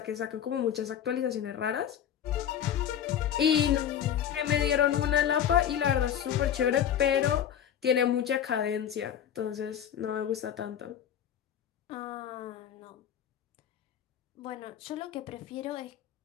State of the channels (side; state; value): right; quieter; 9.6 dB